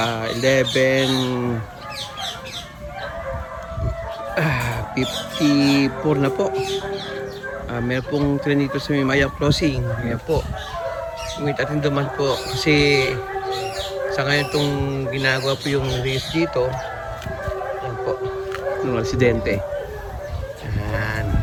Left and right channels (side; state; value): both; identical; correlation 1.00